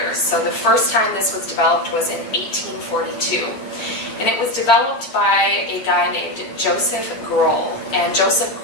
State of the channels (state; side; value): late; right; 8.8 ms